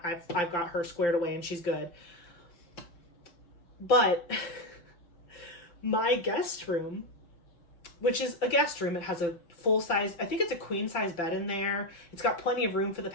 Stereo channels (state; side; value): late; right; 5.9 ms